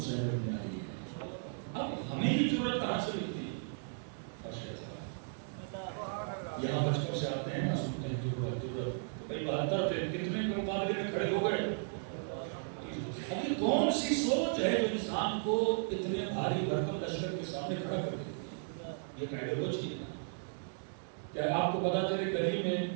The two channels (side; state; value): left; silent; digital silence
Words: بن علی ہے۔ اب ہمیں یہ جرت کہاں سے ملتی ہے؟ یہاں بچپن سے آتے ہیں نا، سنتے ہیں جرت تو بھائی 72 تھے، کتنے کے مقابلے میں کھڑے ہو گئے؟ اب یہ کون سی سوچ ہے جو انسان کو اتنے بھاری بھرکم لشکر کے سامنے کھڑا کر دیتی ہے؟ یہ آئیڈیالوجی ہے نا۔ کیا آپ کو پتا چلے گلی میں